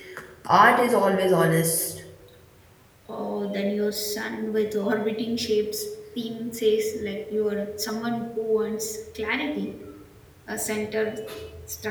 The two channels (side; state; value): both; identical; correlation 1.00